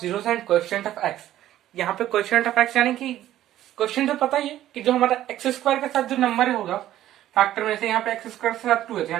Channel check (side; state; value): left; quieter; 13.1 dB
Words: and coefficient of x. यहाँ पे कोएफिशिएंट ऑफ एक्स यानी कि क्वेश्चन तो पता ही है कि जो हमारा एक्स स्क्वायर के साथ जो नंबर होगा फैक्टर में से, यहाँ पे एक्स स्क्वायर के साथ 2 है,